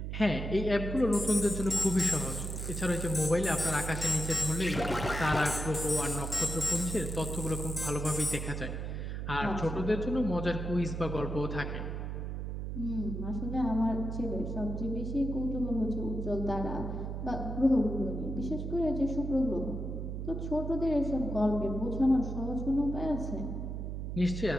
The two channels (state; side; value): noise; right; hum, 4 dB below the sound